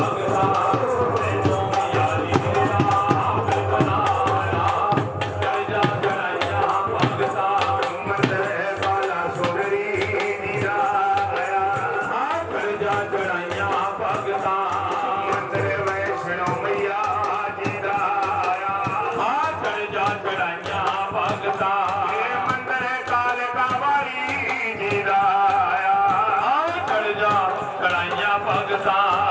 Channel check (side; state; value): both; identical; correlation 1.00